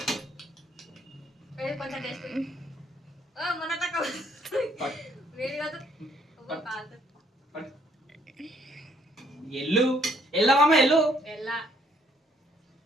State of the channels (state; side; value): normal; both; correlation 0.67